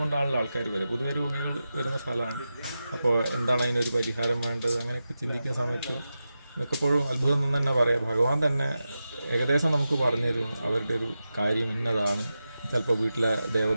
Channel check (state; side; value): inverted; both; correlation -0.92